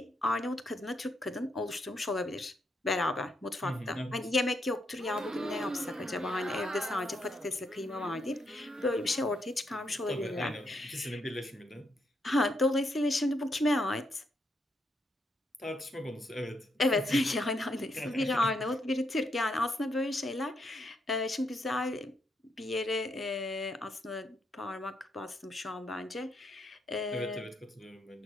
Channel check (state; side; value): normal; both; correlation 0.78